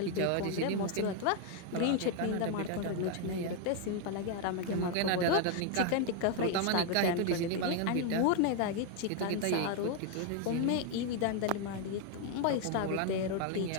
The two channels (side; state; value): both; different; correlation 0.01